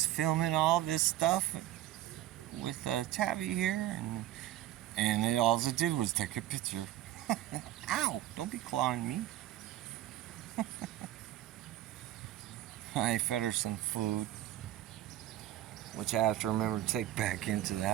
filming all this stuff with Tabby here, and all it did was take a picture. Ow! Don't be clawing me. I fed her some food, which I have to remember to take back into the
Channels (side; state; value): left; quieter; 13.6 dB